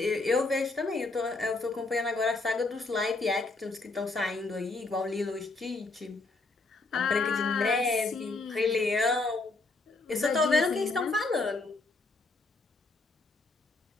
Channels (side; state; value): right; quieter; 3.4 dB